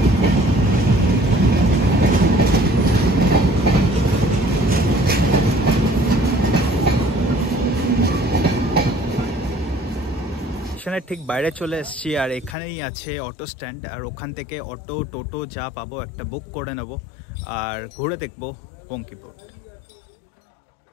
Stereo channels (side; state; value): right; drops out; at 12.6 s